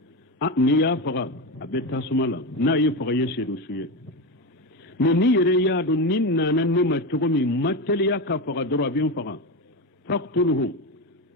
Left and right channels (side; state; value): both; normal; correlation 0.17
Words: نيا فغا أبي تاسمالا نا يفغا يشيدو سويه من نيري يادو نينا نما تغمي متليا كفغا دروا بين فغا فاقتله